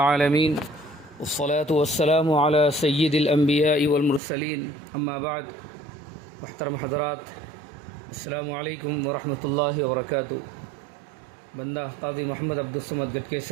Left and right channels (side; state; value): left; drops out; at 4.2 s